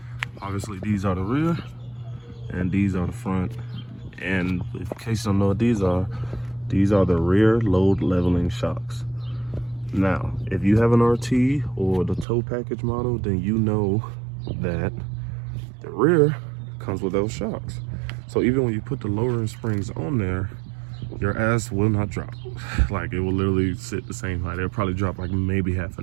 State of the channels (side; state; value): left; drops out; at 12.2 s